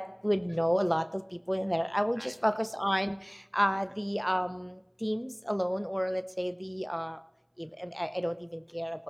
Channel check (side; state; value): both; identical; correlation 1.00